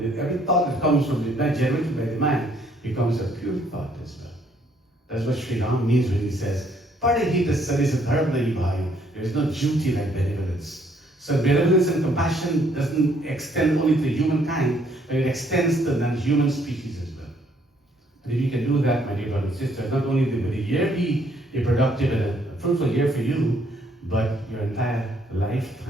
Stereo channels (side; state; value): both; normal; correlation 0.67